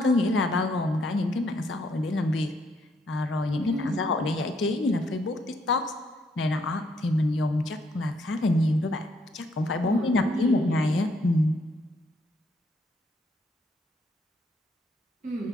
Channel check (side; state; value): both; normal; correlation 0.72